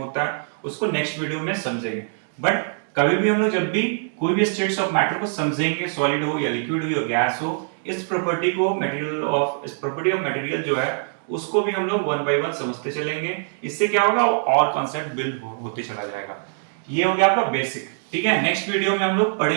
है, उसको नेक्स्ट वीडियो में समझेंगे। बट कभी भी हम लोग जब भी कोई भी स्टेट्स ऑफ मैटर को समझेंगे, सॉलिड हो या लिक्विड हो या गैस हो, इस प्रॉपर्टी को इस प्रॉपर्टी ऑफ मटेरियल जो है उसको भी हम लोग वन बाय वन समझते चलेंगे। इससे क्या होगा, और कॉन्सेप्ट बिल्ड होते चला जाएगा। ये हो गया आपका बेसिक। ठीक है, नेक्स्ट वीडियो में हम लोग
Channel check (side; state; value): left; silent; digital silence